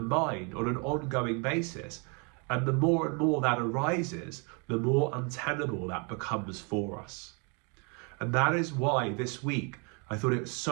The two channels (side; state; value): left; quieter; 34.1 dB